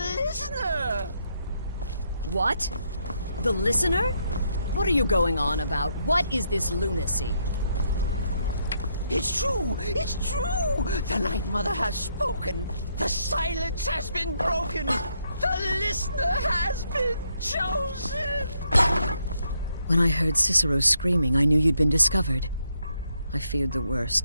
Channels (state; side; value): inverted; both; correlation -0.76